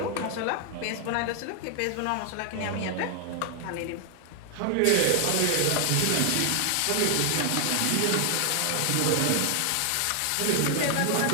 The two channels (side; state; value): both; different; correlation 0.00